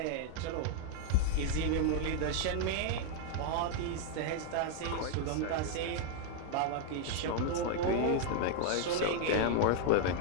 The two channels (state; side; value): different; both; correlation 0.00